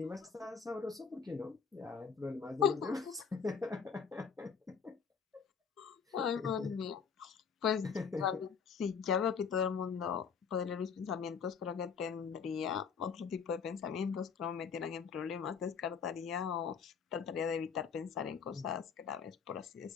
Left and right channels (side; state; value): right; quieter; 6.4 dB